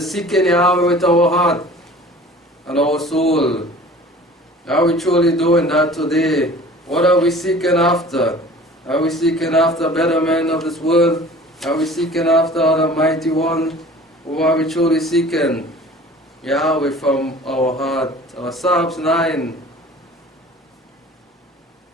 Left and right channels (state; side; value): normal; both; correlation 0.45